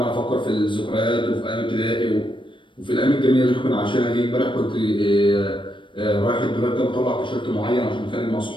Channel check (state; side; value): late; right; 0.24 ms